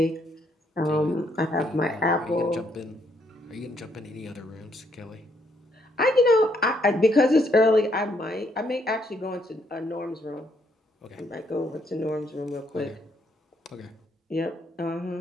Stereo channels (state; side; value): normal; both; correlation 0.72